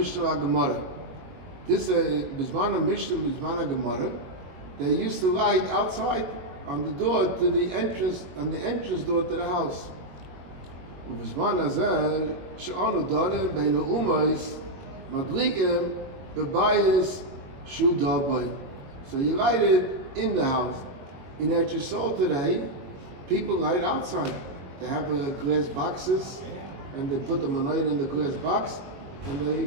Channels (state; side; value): late; left; 22 ms